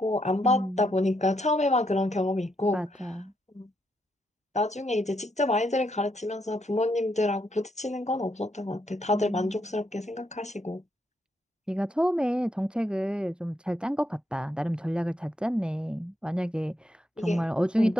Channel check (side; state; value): both; normal; correlation 0.78